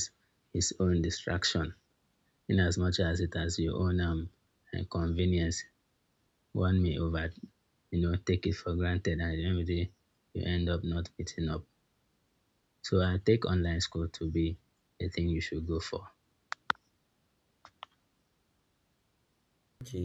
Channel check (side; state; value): both; identical; correlation 1.00